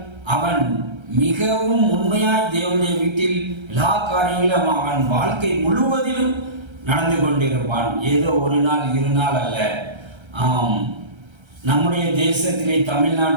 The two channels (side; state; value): left; late; 1.3 ms